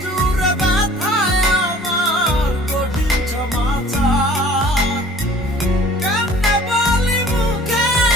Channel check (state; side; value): normal; both; correlation 0.49